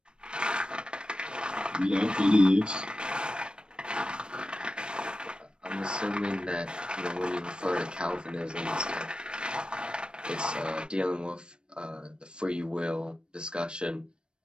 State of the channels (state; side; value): late; left; 0.053 ms